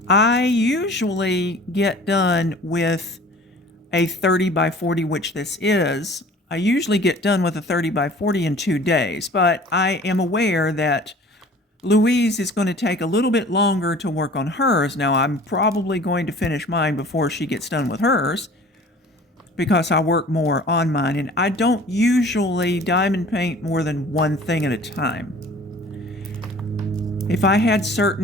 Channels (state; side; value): normal; both; correlation 0.46